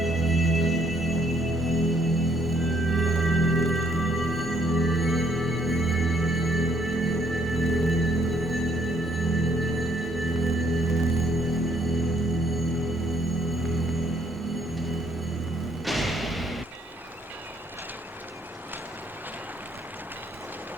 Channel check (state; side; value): normal; both; correlation 0.67